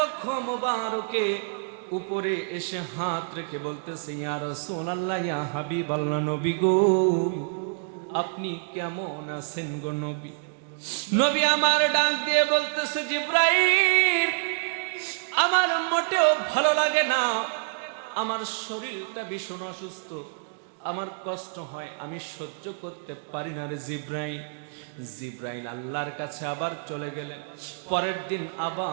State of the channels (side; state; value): left; silent; digital silence